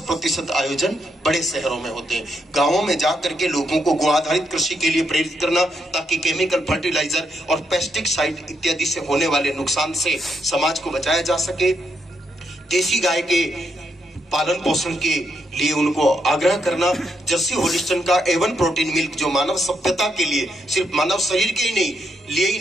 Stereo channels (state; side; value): normal; both; correlation 0.80